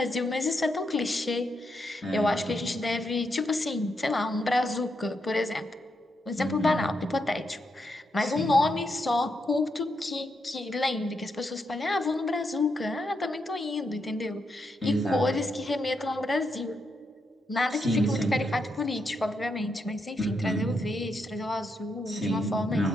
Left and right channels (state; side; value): normal; both; correlation 0.82